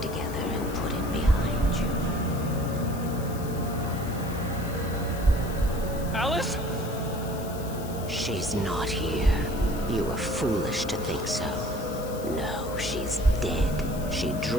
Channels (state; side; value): noise; left; hiss, 15 dB below the sound